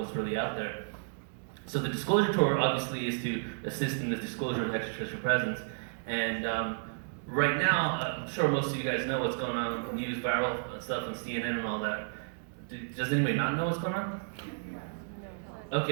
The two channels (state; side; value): silent; left; digital silence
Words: really out there. So the Disclosure Tour obviously is to assist in the disclosure of extraterrestrial presence. And right now, I'm sure most of you guys know what's going on in the news, viral stuff on CNN and all that. Does anybody not know what's going on?